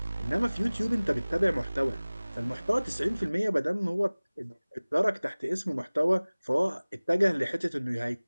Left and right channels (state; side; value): inverted; both; correlation -1.00